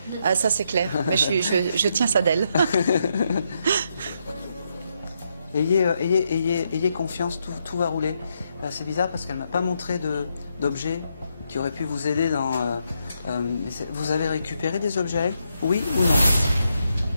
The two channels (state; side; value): inverted; both; correlation -0.80